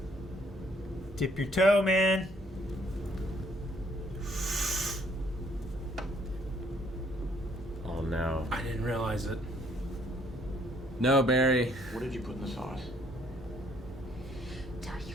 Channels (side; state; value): both; normal; correlation 0.65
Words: Dip your toe, man. Oh no. I didn't realize it. No, Barry. What did you put in the sauce? Tell you,